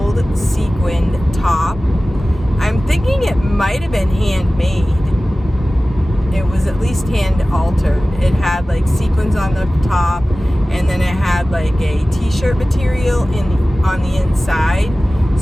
sequined top. I'm thinking it might have been handmade. It was at least hand altered. It had like sequins on the top, and then it had like a t-shirt material on the inside.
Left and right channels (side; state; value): both; normal; correlation 0.97